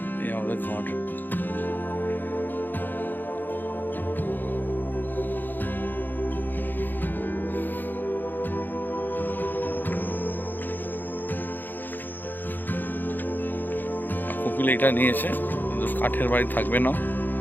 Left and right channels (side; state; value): right; late; 0.089 ms